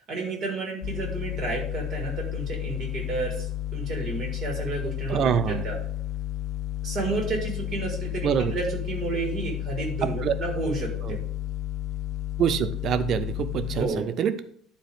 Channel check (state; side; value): normal; both; correlation 0.46